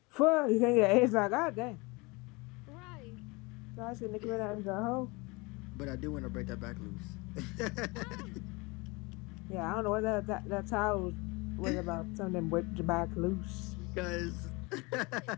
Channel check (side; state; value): right; quieter; 26.0 dB